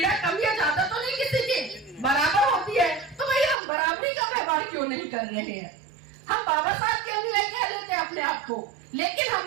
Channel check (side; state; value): left; drops out; at 3.6 s